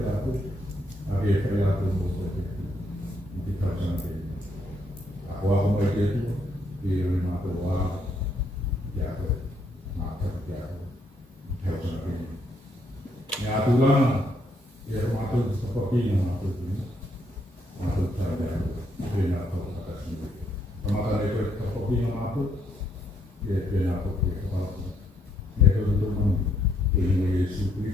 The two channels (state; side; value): normal; both; correlation 0.73